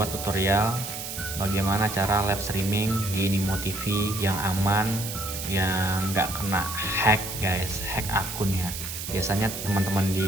tutorial bagaimana cara live streaming di Nimo TV yang aman, yang nggak kena hack guys, hack akun ya. Biasanya teman-teman di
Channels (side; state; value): right; noise; hiss, 7 dB below the sound